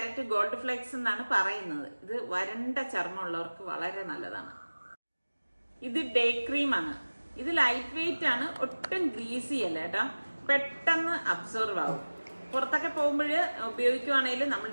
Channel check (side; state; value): both; inverted; correlation -1.00